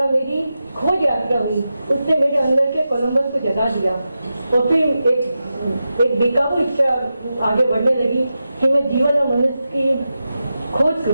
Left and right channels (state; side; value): inverted; both; correlation -0.91